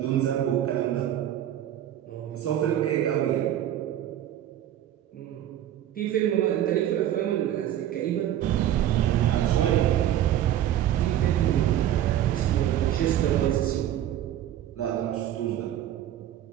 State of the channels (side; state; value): left; quieter; 11.7 dB